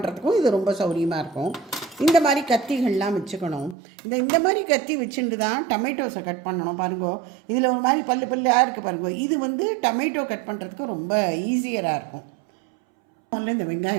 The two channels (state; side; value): drops out; left; at 3.8 s